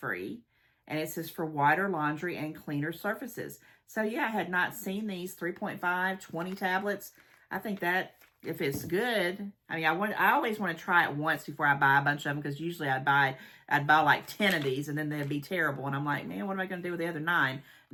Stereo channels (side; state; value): both; identical; correlation 1.00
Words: And it says for whiter laundry and cleaner surfaces. So yeah, I had not seen these 3.5, 20 tablets. I think that if it's good, I mean, I always want to try it once before I buy a bunch of them, because usually I'd buy like 10 of these and then they'd be terrible. And I'm like, man, what am I going to do with the other 9?